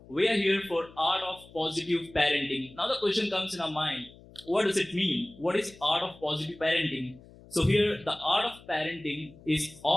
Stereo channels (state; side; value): noise; left; hum, 22 dB below the sound